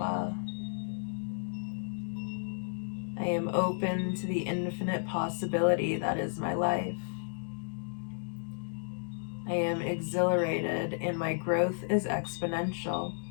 I am open to the infinite possibility that is my life. I am exhilarated and my growth is exponential.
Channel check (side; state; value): right; silent; digital silence